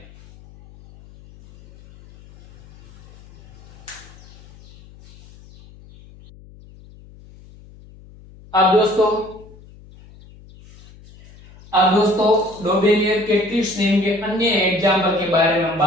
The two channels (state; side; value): noise; left; hum, 23 dB below the sound